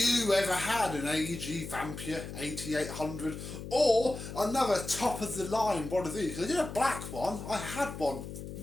ever had an AEG Vampyr 8800 or another top of the line one of these? I did a black one. I had one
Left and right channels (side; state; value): left; noise; hum, 9 dB below the sound